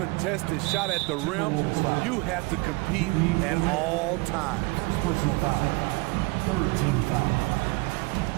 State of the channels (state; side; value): quieter; left; 25.6 dB